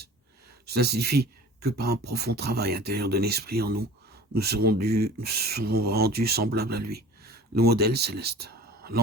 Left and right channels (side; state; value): both; normal; correlation 0.42